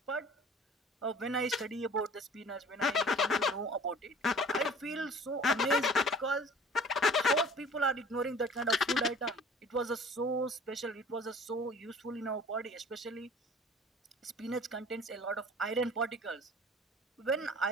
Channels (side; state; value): both; normal; correlation 0.47